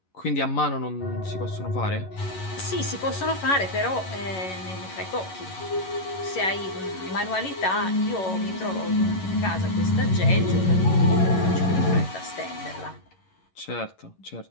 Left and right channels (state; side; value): late; right; 11 ms